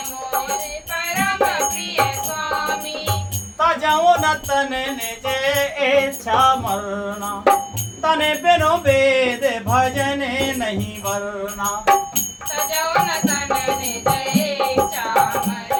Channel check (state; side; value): identical; both; correlation 1.00